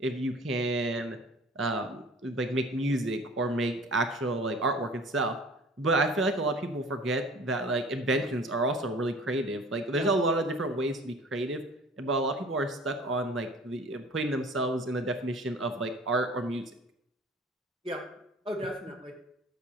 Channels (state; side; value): normal; both; correlation 0.46